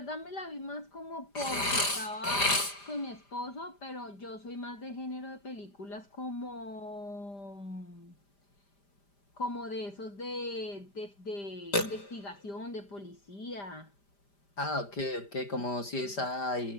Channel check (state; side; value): late; right; 5.0 ms